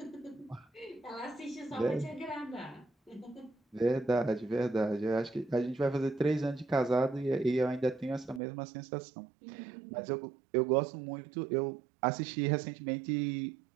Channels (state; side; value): drops out; left; at 8.4 s